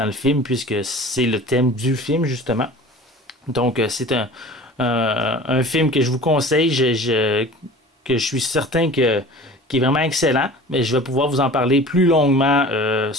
le film, puisque c'est le thème du film, justement. Donc, c'est un film que je vous conseille, que je suis certain qui est vraiment excellent, mais je vais pouvoir vous en parler plus longuement,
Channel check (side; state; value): both; normal; correlation 0.41